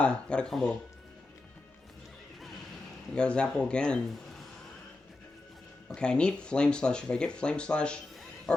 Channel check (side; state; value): right; quieter; 3.0 dB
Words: got a combo. I got a Zapple again. Okay, I need Flame Slash. If I get Flame Slash